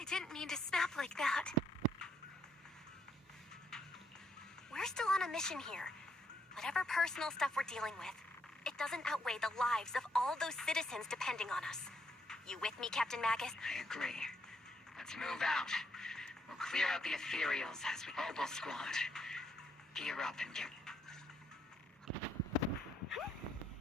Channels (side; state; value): both; normal; correlation 0.73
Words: didn't mean to snap like that. We're still on a mission here. Whatever personal stuff we're dealing with, it doesn't outweigh the lives of all those citizens depending on us. You with me, Captain Magus? I agree. Let's move out. We'll clear out the ethereals as we Obel Squad. Gear up and get...